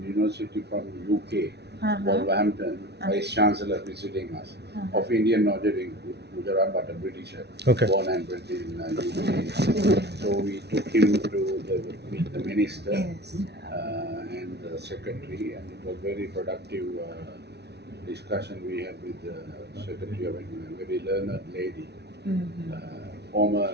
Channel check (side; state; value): left; late; 0.49 ms